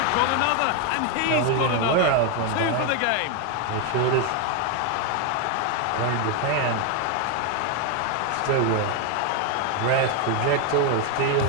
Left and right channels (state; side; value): different; both; correlation 0.01